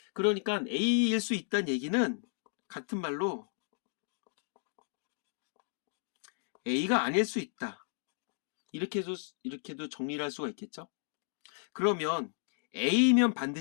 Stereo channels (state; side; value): silent; right; digital silence